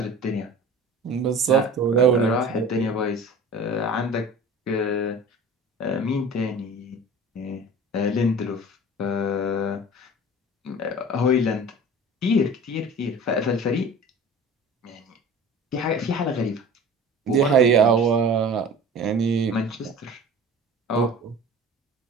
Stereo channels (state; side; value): normal; both; correlation 0.40